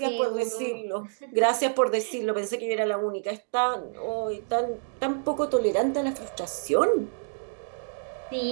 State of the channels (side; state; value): left; silent; digital silence